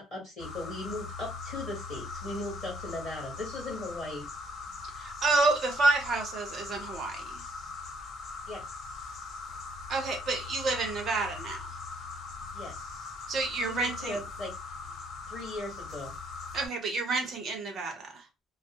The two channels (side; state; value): both; normal; correlation 0.66